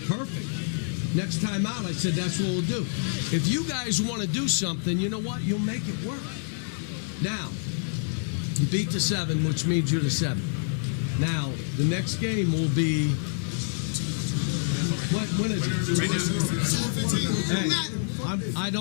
Perfect. Next time out, I said, that's what we'll do. If you guys want to do something, you know what? You'll make it work. Now, you beat the 7, which means you're the 7. Now, the next game will be, when is it? Right now. Hey, I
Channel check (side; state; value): right; silent; 60 dB below the other